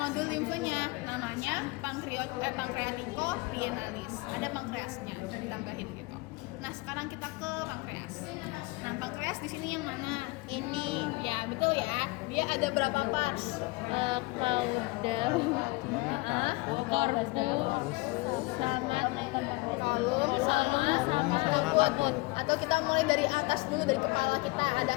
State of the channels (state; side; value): quieter; right; 24.2 dB